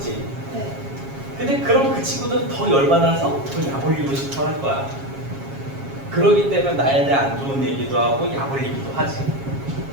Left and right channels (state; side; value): late; left; 7.3 ms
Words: 네. 근데 그럼 그 친구들은 더 열받아서 더 약 올리고 싶어 할 거야. 그러기 때문에 나에 대해 안 좋은 얘기도 하고 약 올리기도 하지.